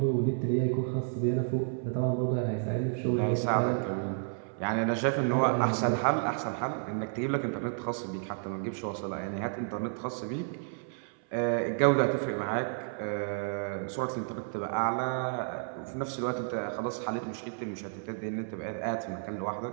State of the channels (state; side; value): silent; left; 57 dB below the other